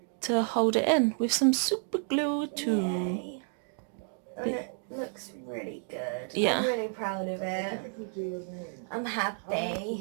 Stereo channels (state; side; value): silent; left; 57 dB below the other